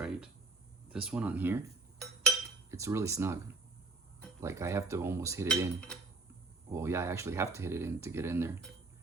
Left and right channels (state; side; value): quieter; left; 3.6 dB